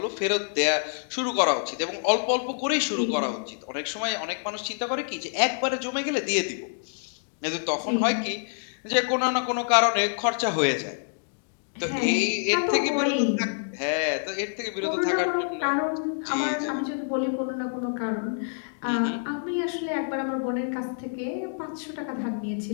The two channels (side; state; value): right; silent; digital silence